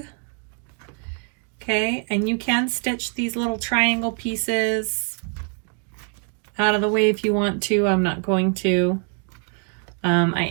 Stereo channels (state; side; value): quieter; left; 38.3 dB